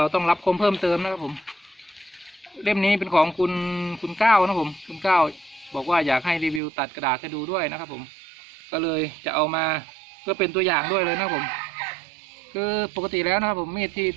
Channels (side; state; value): left; drops out; at 6.6 s